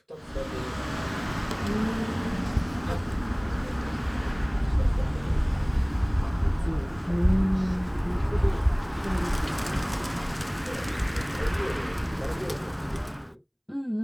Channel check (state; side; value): identical; both; correlation 1.00